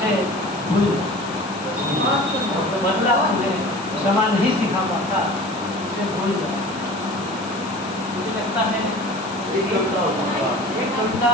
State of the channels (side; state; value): left; noise; hiss, 18 dB below the sound